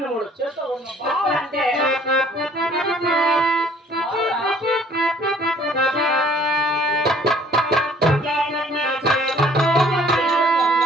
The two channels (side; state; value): both; normal; correlation 0.57